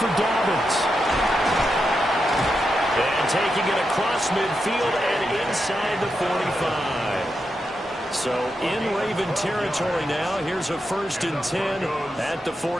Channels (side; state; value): both; normal; correlation 0.86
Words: Dobbins. And taking it across midfield and inside the 45. So in Raven territory now. Here's a first and 10 at the